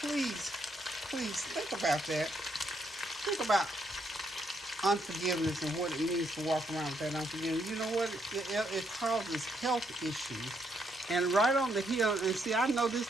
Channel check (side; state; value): both; normal; correlation 0.75